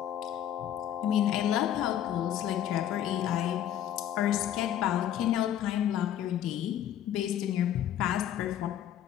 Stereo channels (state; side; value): quieter; right; 11.0 dB